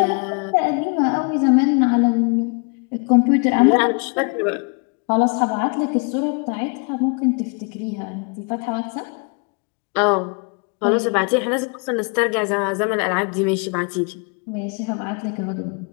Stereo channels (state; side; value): quieter; right; 34.4 dB